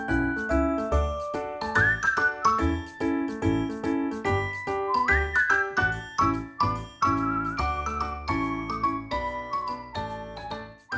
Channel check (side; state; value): both; identical; correlation 1.00